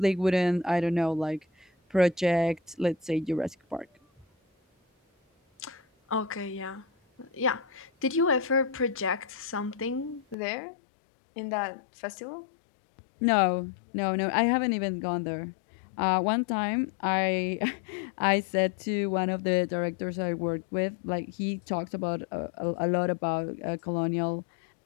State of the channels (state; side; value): drops out; right; at 10.4 s